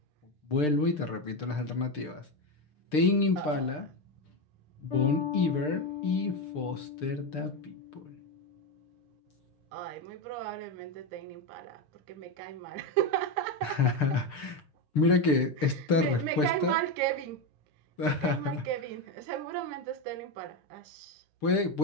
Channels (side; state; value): right; late; 6.7 ms